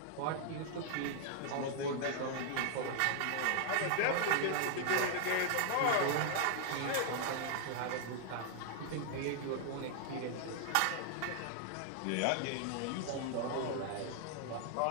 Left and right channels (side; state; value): both; different; correlation 0.00